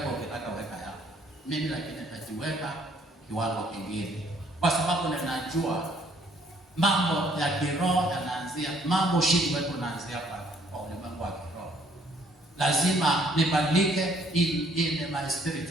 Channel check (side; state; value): both; normal; correlation 0.64